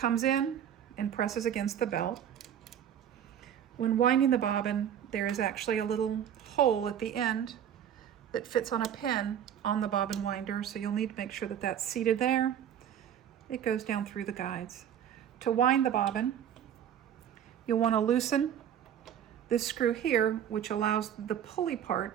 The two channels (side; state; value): left; quieter; 9.5 dB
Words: in and presses against the belt. When winding the bobbin, there is actually a little hole at the end that fits on a pin on the bobbin winder, so you'll need to make sure that that's seated there. It goes down through the guides. To wind the bobbin, you'll want to loosen this screw here, which allows the pulley part